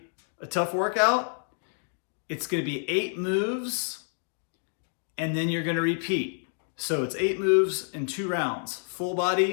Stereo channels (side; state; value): right; silent; 56 dB below the other